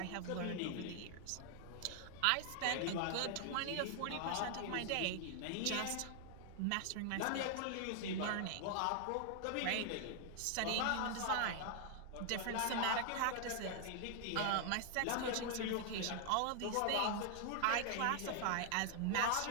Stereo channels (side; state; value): both; different; correlation 0.00